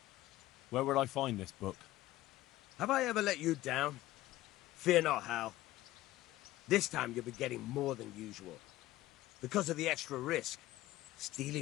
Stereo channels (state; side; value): quieter; right; 16.3 dB